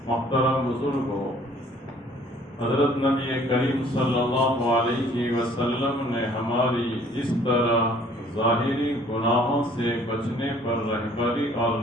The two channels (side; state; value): both; normal; correlation 0.56